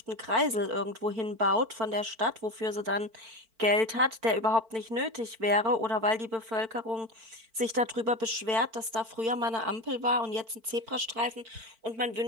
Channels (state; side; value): late; left; 4.5 ms